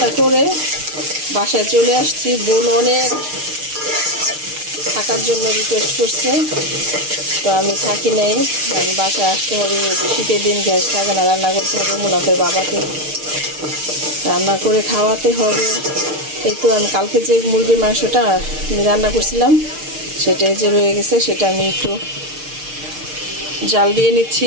করে বাসায় চলে আসছি। বোন অনেক থাকার জন্য রিকোয়েস্ট করছে, তো আমি থাকি নাই। আমি বাসায় আসতে হবে, শীতের দিন গ্যাস থাকে না, রান্না করতে হবে, মুনাফের বাবাকে রান্না করে খাওয়াতে হবে। এই তো আমি কালকে যে মুরগির মাংসটা আমি রান্না করছিলাম সেটাই যে রয়ে গেছে, সেটা আমি একটু জাল দিয়ে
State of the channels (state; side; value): late; left; 6.6 ms